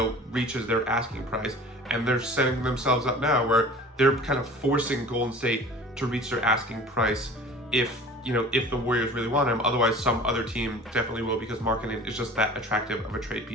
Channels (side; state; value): both; normal; correlation 0.43